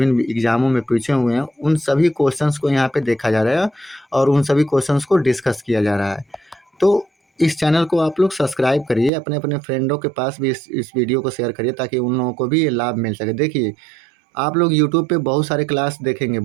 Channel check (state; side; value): drops out; left; at 9.1 s